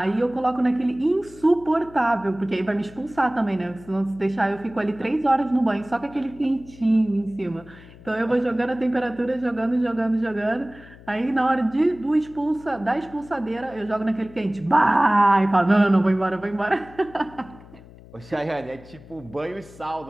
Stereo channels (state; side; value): noise; left; hum, 21 dB below the sound